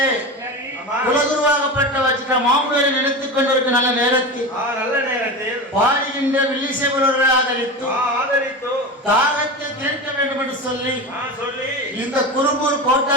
சரி. ஆமா. குலகுருவாகப்பட்ட வச்சிட்ட மாமுனிவரை நினைத்துக் கொண்டிருக்க நல்ல நேரத்தில் நல்ல நேரத்தில் பாடுகின்ற வில்லிசேவரர்களை ஆதரித்து ஆதரித்து தாகத்தை தீர்க்க வேண்டும் என்று சொல்லி சொல்லி இந்த குரும்பூர்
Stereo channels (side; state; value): both; normal; correlation 0.25